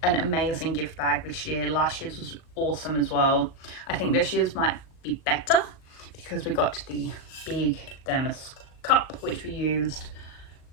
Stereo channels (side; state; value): right; late; 38 ms